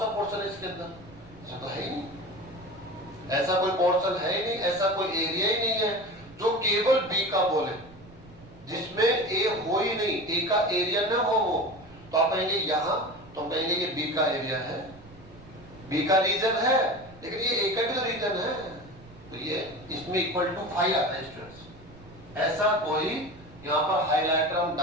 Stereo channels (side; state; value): right; noise; rumble, 21 dB below the sound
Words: पोर्शन है इसके अंदर? ऐसा तो है ही नहीं, ऐसा कोई पोर्शन है ही नहीं, ऐसा कोई एरिया ही नहीं है जो केवल बी का बोले, जिसमें ए हो ही नहीं, ए का एरिया ना हो वो। तो आप कहेंगे यहां, तो हम कहेंगे ये बी का एरिया है, बी का रीजन है, लेकिन ये ए का भी तो रीजन है, तो ये इसमें इक्वल टू 5 आता है स्टूडेंट्स। ऐसा कोई यहां पर हाइलाइटर हम